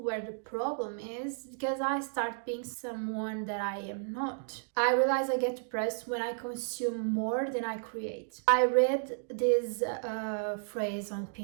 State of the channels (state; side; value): silent; left; digital silence